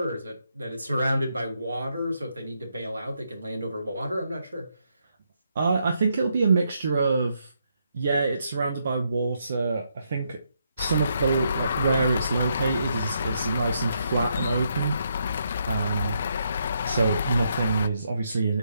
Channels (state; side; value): inverted; both; correlation -0.78